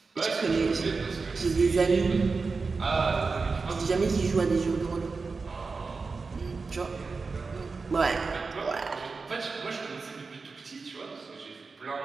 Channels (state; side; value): quieter; left; 4.4 dB